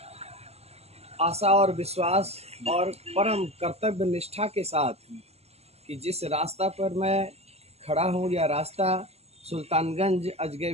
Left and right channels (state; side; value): late; left; 0.30 ms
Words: आशा और विश्वास और परम कर्तव्य निष्ठा के साथ कि जिस रास्ता पर मैं खड़ा हूँ, यह रास्ता सुल्तानगंज